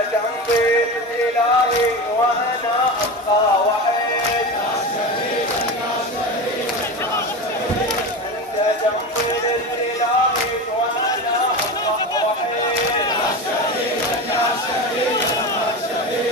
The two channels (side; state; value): both; normal; correlation 0.25